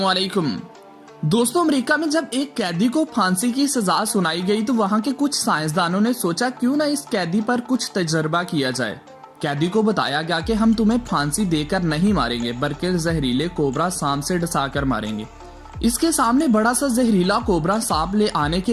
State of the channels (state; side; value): identical; both; correlation 1.00